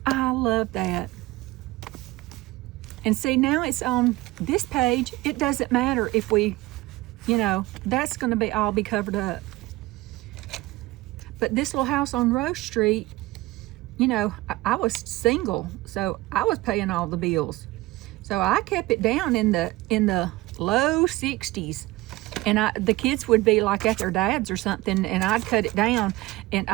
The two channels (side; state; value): left; quieter; 19.9 dB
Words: I love that. And see, now it's on this page. It doesn't matter if we, you know, that's going to be all be covered up. But this little house on Rose Street, you know, I was single, so I was paying all the bills. So I kept it down in the low 60s. And the kids would be like at their dad's or something, and I'd cut it down, and